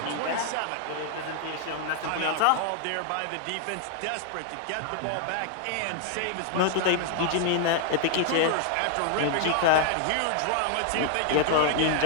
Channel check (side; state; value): both; different; correlation 0.00